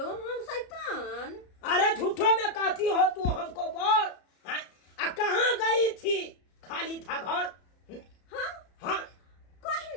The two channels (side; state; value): right; late; 33 ms